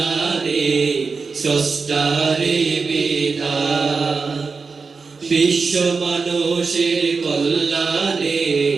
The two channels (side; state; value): left; quieter; 4.7 dB